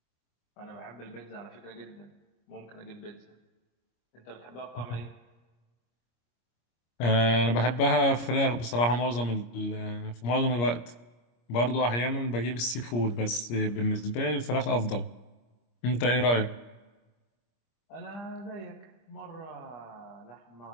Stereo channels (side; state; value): right; late; 25 ms